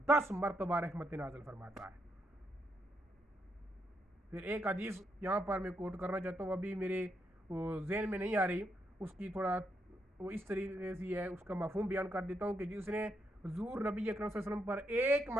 10 مرتبہ رحمت نازل فرماتا ہے. پھر ایک حدیث یہاں پر میں کوٹ کرنا چاہتا ہوں, ابھی میرے ذہن میں نہیں آ رہی, اس کی تھوڑا وہ اس طریقے سے ہے, اس کا مفہوم بیان کر دیتا ہوں کہ جس نے حضور نبی اکرم صلی اللہ علیہ وسلم پر ایک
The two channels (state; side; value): normal; both; correlation 0.79